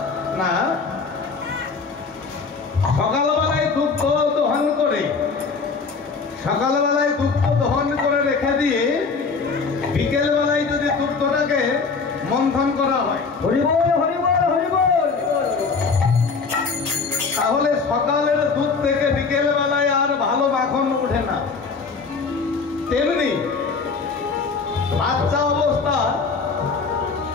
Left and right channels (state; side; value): quieter; right; 4.8 dB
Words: না, সকালবেলায় দুগ্ধ দহন করে রেখে দিয়ে বিকেল বেলায় যদি দুগ্ধটাকে মন্থন করা হয়, তাহলে সকালের দুধ থেকে বিকেল বেলায় আর ভালো মাখন উঠে না। তেমনি